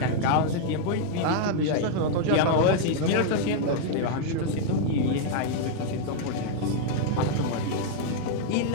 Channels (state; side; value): different; both; correlation -0.01